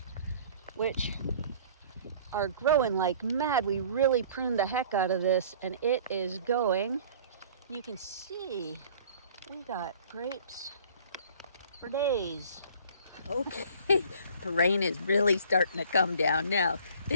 which are growing like mad. We really pruned the heck out of this, and it is going. You can see we got grapes for days. Okay, the rain is really starting to come down now.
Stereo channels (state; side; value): inverted; both; correlation -0.50